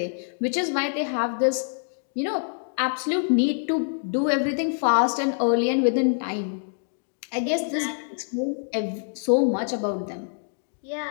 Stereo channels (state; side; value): silent; right; digital silence